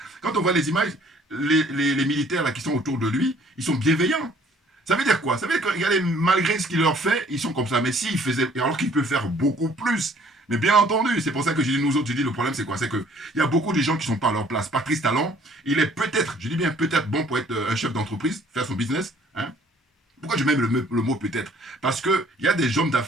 quand on voit les images, les militaires là, qui sont autour de lui, ils sont bienveillants. Ça veut dire quoi? Ça veut dire que malgré ce qu'il leur fait, ils sont comme ça. Mais s'il faisait, alors qu'il peut faire beaucoup plus. Mais bien entendu, c'est pour ça que je dis nous autres, je dis le problème c'est quoi? C'est qu'il y a beaucoup de gens qui ne sont pas à leur place. Patrice Talon, il est peut-être, je dis bien peut-être bon pour être un chef d'entreprise, faire son business. Hein? Pourquoi je mets le mot peut-être? Parce qu'il y a des hommes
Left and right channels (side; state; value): both; normal; correlation 0.58